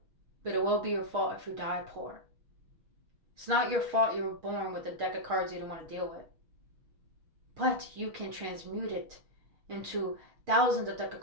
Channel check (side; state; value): left; late; 6.4 ms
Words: but it will be your fault if you die poor. It's not your fault you were born with a deck of cards you didn't want to deal with. But you can transmute it into thousands of deck of